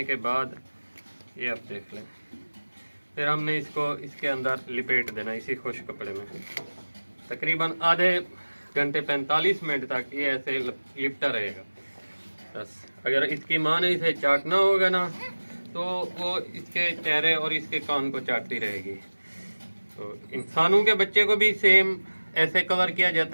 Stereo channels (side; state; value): both; inverted; correlation -1.00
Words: के बाद ये आप देख लें, फिर हमने इसको इसके अंदर लिपेट देना इसी खुश कपड़े में। तकरीबन आधे घंटे 45 मिनट तक ये ऐसे लिपटा रहेगा। बस अगर इसकी माँ ने इसे चाटना होगा ना तो वो इसके चेहरे और इसके कान को चाटती रहेगी। तो इंसानों के बच्चे को भी सेम ऐसे कवर किया